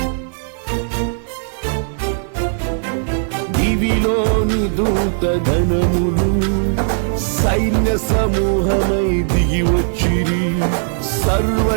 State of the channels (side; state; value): left; silent; 68 dB below the other